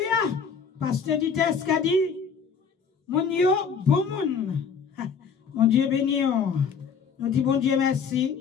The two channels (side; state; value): right; quieter; 6.1 dB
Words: Pasteur du test qui a dit, mon yo, bon monde. Mon Dieu béni. Nous disons bon Dieu